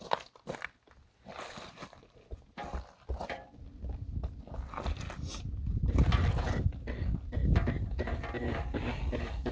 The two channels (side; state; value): both; identical; correlation 1.00